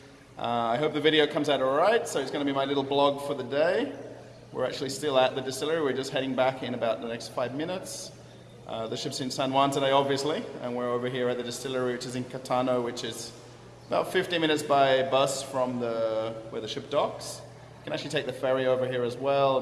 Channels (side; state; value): both; identical; correlation 1.00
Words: I hope the video comes out alright, so it's going to be my little blog for the day. We're actually still at the distillery, we're just heading back in about the next 5 minutes. The ship's in San Juan today, obviously, and we're over here at the distillery, which is in Catano, which is about 15 minutes by bus from where the ship docks. You can actually take the ferry over here as well